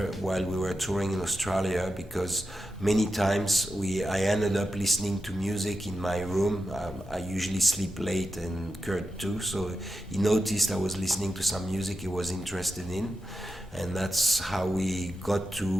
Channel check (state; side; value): normal; both; correlation 0.89